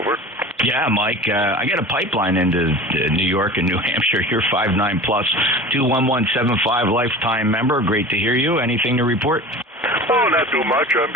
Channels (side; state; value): both; normal; correlation 0.36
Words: Yeah, Mike, I got a pipeline into New York and New Hampshire. You're 5'9" plus, 21175 lifetime member. Great to hear you. Anything to report? Oh, not too much. I'm